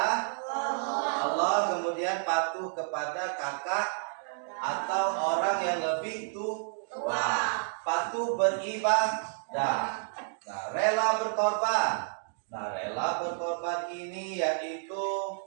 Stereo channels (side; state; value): left; silent; digital silence